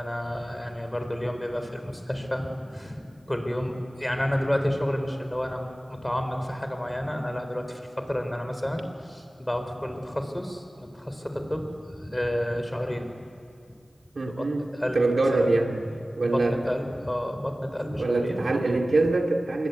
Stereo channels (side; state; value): both; normal; correlation 0.97